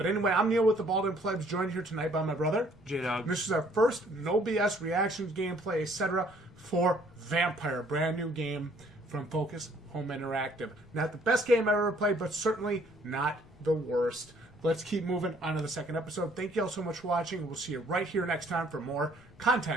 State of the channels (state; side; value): normal; both; correlation 0.61